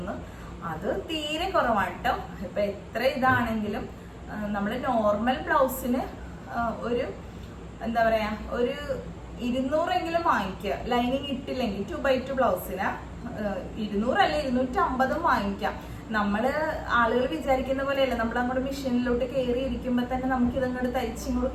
അത് തീരെ കുറവാണ് കേട്ടോ. ഇപ്പൊ എത്ര ഇതാണെങ്കിലും നമ്മൾ നോർമൽ ബ്ലൗസിന് ഒരു എന്താ പറയാ ഒരു 200 വാങ്ങിക്കുക. ലൈനിങ് ഇട്ടില്ലെങ്കിൽ 2x2 ബ്ലൗസിന് 200 അല്ല 250 വാങ്ങിക്കാം. നമ്മള് ആളുകൾ വിചാരിക്കുന്ന പോലെയല്ല. നമ്മൾ അങ്ങോട്ട് മെഷീനിലോട്ട് കയറി ഇരിക്കുമ്പോ തന്നെ നമുക്ക് ഇതങ്ങോട്ട് തയ്ച്ചിങ്ങോട്ട്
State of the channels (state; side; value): identical; both; correlation 1.00